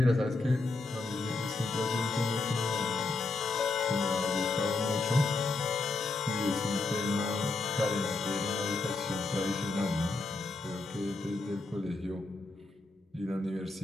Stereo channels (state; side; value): quieter; right; 3.5 dB